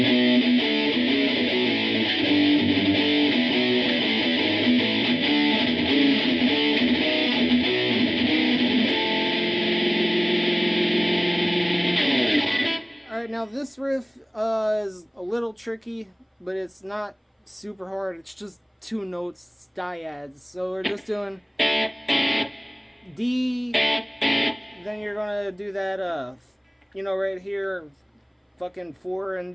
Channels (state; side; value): identical; both; correlation 1.00